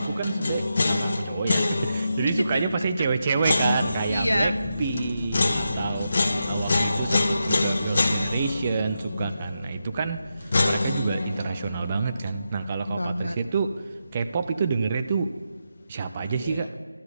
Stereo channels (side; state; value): both; inverted; correlation -0.86